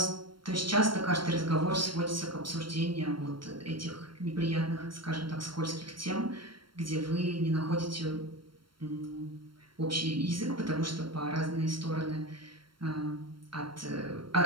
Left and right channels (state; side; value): late; left; 0.73 ms